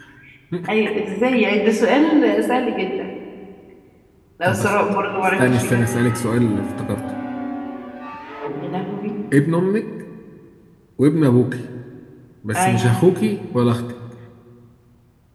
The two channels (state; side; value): identical; both; correlation 1.00